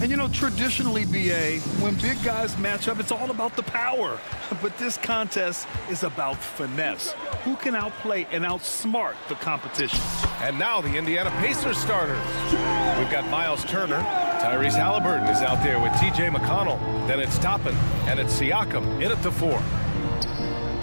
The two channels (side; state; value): both; inverted; correlation -1.00